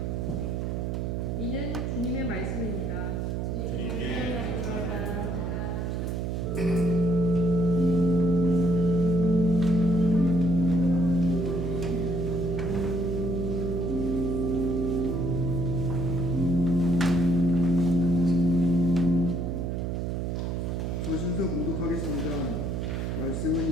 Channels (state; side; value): noise; right; hum, 1 dB below the sound